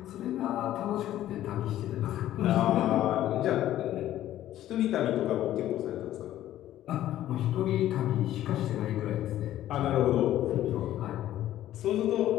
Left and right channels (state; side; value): quieter; right; 13.1 dB